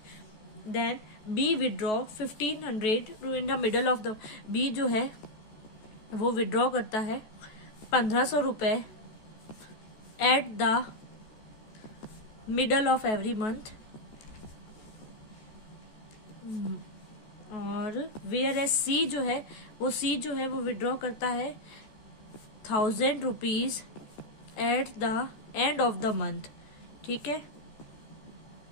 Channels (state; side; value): late; right; 14 ms